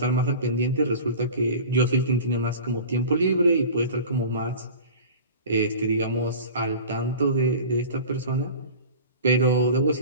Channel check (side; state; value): both; inverted; correlation -0.37